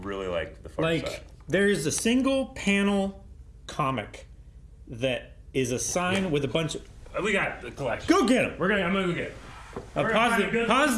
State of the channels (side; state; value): both; identical; correlation 1.00